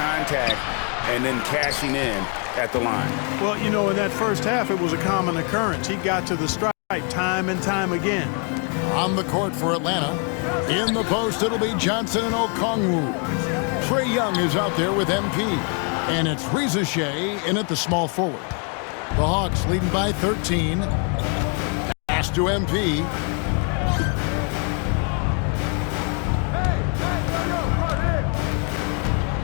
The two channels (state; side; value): quieter; right; 39.5 dB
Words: and then cashing in at the line. Well, you know, in that first half, it was a common occurrence. He got to the stripe time and time again. On the court for Atlanta. In the post, it'll be Johnson and Okongwu. Trae Young is out there with MP. And it's Reza Shea in at the small forward. The Hawks leading by 13. Pass to MP.